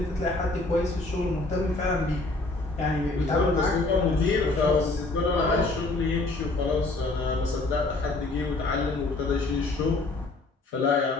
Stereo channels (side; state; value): right; quieter; 3.1 dB